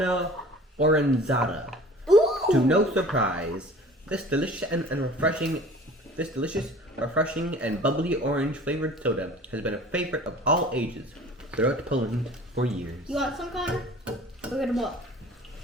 Oranzata. Ooh! To no surprise, this delicious refreshing and bubbly orange flavored soda has been a favorite of all ages throughout Poland for years. You want some, Connor? Go get a bowl.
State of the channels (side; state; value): both; normal; correlation 0.45